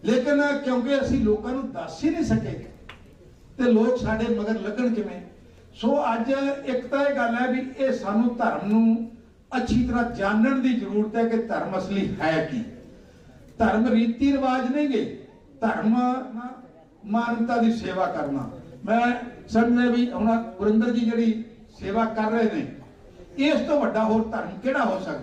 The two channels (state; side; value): identical; both; correlation 1.00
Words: ਲੇਕਿਨ ਕਿਉਂਕਿ ਅਸੀਂ ਲੋਕਾਂ ਨੂੰ ਦੱਸ ਹੀ ਨਹੀਂ ਸਕੇ ਤੇ ਲੋਕ ਸਾਡੇ ਮਗਰ ਲੱਗਣ ਕਿਵੇਂ। ਸੋ ਅੱਜ ਇੱਕ ਤਾਂ ਇਹ ਗੱਲ ਹੈ ਵੀ ਇਹ ਸਾਨੂੰ ਧਰਮ ਨੂੰ अच्छी तरह जानने की जरूरत है कि धर्म असली है की। धर्म रीति रिवाज नहीं गे, धर्म मानवता की सेवा करना। मैं समझदा भी हुण गुरिंदर जी जिहड़ी सेवा कर रहे हैं, इस तो वड्डा होर धर्म किहड़ा हो